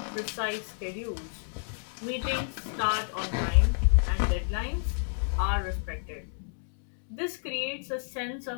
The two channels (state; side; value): silent; right; digital silence